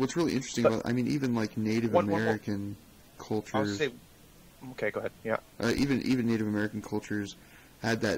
really interesting about, even like Native American cultures. Okay, go ahead. Yeah. Even Native American cultures had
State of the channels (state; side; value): identical; both; correlation 1.00